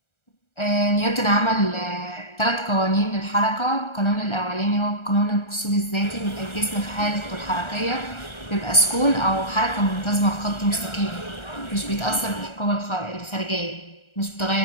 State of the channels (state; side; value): late; right; 1.4 ms